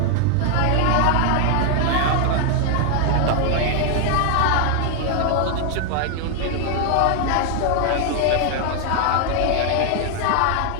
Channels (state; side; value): different; both; correlation 0.00